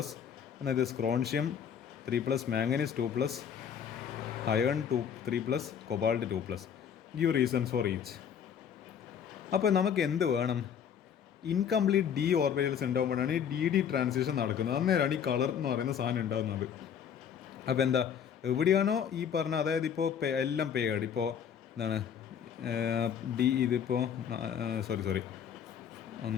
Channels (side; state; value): right; quieter; 8.2 dB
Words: അതായത് സ്ക്രോൺഷ്യം 3+, manganese 2+, iron 3+, cobalt 2+. Give reasons for each. അപ്പോൾ നമുക്ക് എന്ത് വേണം, ഇൻകംപ്ലീറ്റ് ഡി ഓർബിറ്റൽസ് ഉണ്ടാകുമ്പോഴാണ് ഈ DD ട്രാൻസിഷൻ നടക്കുന്നത്. അന്നേരമാണ് ഈ കളർ എന്ന് പറയുന്ന സാധനം ഉണ്ടാകുന്നത്. അപ്പോൾ എന്താ എവിടെയാണോ ഈ പറഞ്ഞ, അതായത് ഇപ്പോൾ എല്ലാം പേഡ്, ഇപ്പോൾ എന്താണ് ഇതിപ്പോൾ